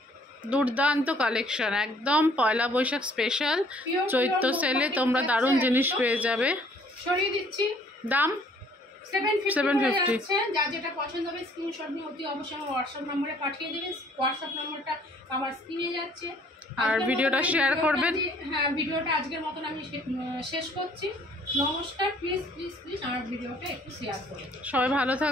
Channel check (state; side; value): normal; both; correlation 0.59